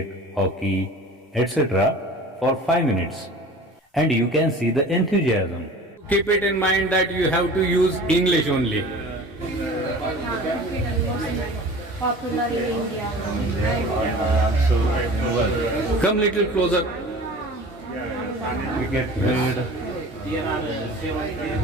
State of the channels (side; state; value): both; normal; correlation 0.41